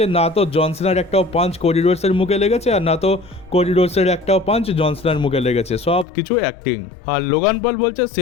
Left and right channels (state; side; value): drops out; right; at 6.1 s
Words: না তো জন সিনার একটাও পাঞ্চ কোডি রোডসের মুখে লেগেছে, আর না তো কোডি রোডসের একটাও পাঞ্চ জন সিনার মুখে লেগেছে, সব কিছু অ্যাক্টিং। আর লোগান পল বলছে